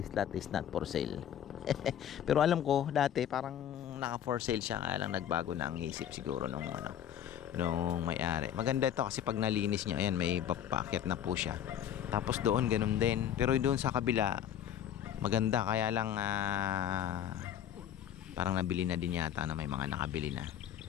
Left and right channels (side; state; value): right; quieter; 10.0 dB